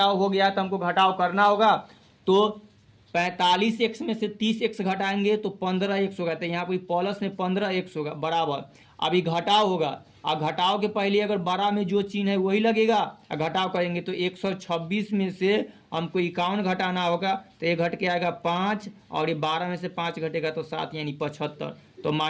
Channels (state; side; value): identical; both; correlation 1.00